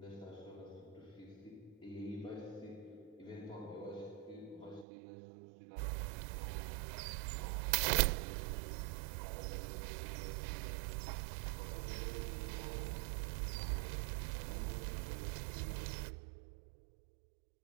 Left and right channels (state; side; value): drops out; left; at 4.9 s